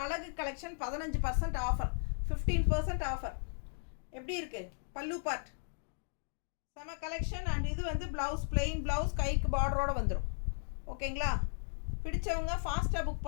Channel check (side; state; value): right; silent; digital silence